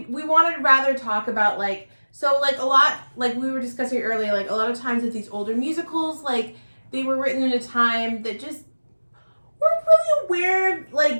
wanted to rather talk about, like, so, like, a lot, like, we were discussing earlier, like, a lot of times with these older musicals, like, they were written in a time that just weren't really aware of,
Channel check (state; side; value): inverted; both; correlation -1.00